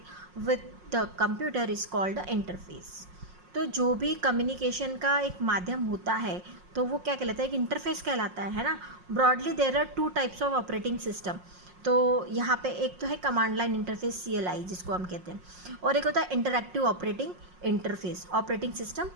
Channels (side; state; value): left; late; 5.5 ms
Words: with the computer is called the interface. तो जो भी कम्युनिकेशन का एक माध्यम होता है तो वो क्या कहलाता है? एक इंटरफेस कहलाता है ना। Broadly there are 2 types of operating system. तो यहाँ पे एक तो है कमांड लाइन इंटरफेस, CLI जिसको हम कहते हैं, और एक होता है interactive operating interface, operating system